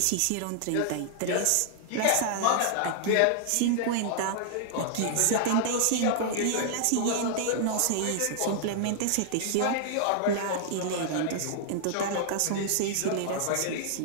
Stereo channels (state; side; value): different; both; correlation -0.01